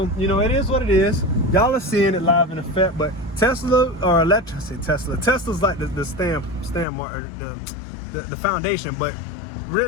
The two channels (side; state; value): right; drops out; at 6.9 s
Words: you know, it is what it is. Y'all are seeing it live in effect. But Tesla, or Tesla's like the the foundation. But